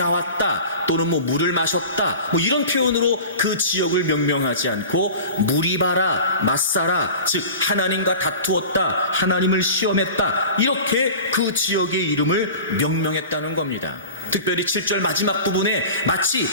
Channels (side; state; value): both; inverted; correlation -0.36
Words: 또는 물을 마셨다 이런 표현으로 그 지역을 명명하지 않고 무리바라, 마사라, 즉 하나님과 다투었다, 하나님을 시험했다 이렇게 그 지역의 이름을 명명했다는 겁니다. 특별히 7절 마지막 부분에 마치